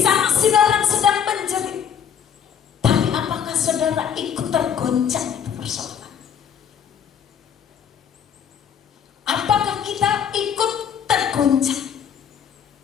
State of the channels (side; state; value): right; quieter; 8.1 dB